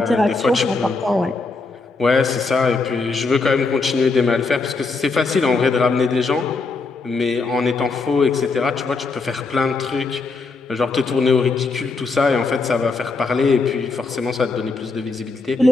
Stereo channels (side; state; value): right; quieter; 4.0 dB